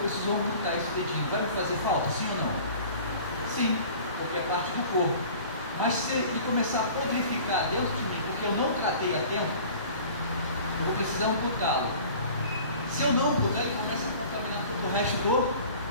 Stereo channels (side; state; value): both; inverted; correlation -0.45